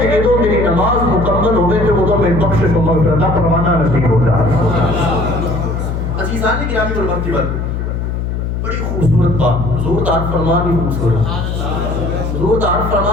کہ ادو میری نماز مکمل ہوئے تو ادو میں بخشش و مغفرت کا پروانہ نصیب ہو جائے. عزیزان گرامی اور مرتبہ بڑی خوبصورت بات, حضور دا فرمان ہی خوبصورت, حضور دا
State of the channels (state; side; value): noise; left; hum, 2 dB below the sound